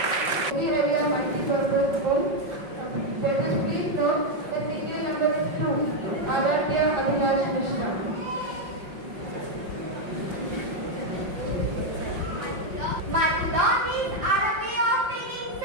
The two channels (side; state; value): left; late; 5.5 ms